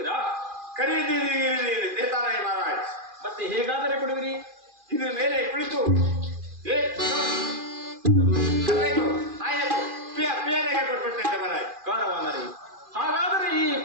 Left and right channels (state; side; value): late; left; 2.4 ms